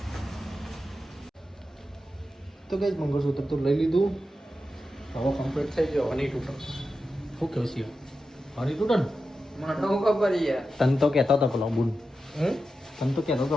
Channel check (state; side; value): normal; both; correlation 0.90